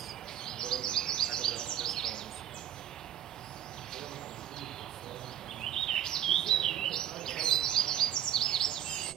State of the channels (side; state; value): left; quieter; 10.9 dB